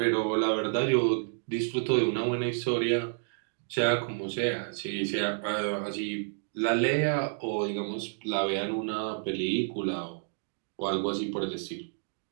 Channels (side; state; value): left; silent; digital silence